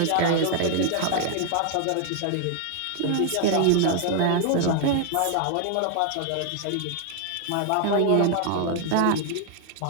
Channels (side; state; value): both; different; correlation 0.00